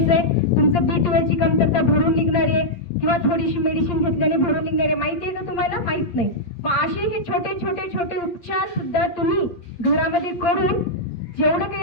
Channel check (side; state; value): right; late; 8.6 ms